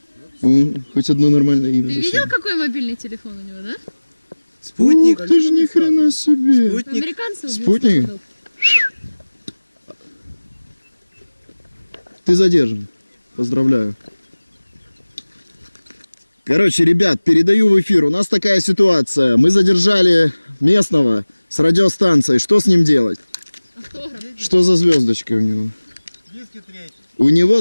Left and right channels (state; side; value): inverted; both; correlation -1.00